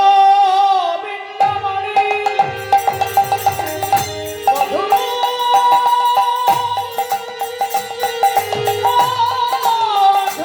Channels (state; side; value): identical; both; correlation 1.00